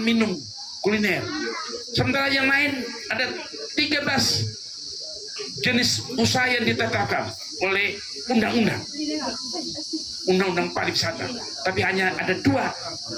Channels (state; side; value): identical; both; correlation 1.00